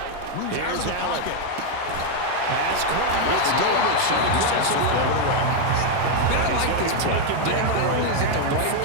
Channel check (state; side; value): different; both; correlation 0.01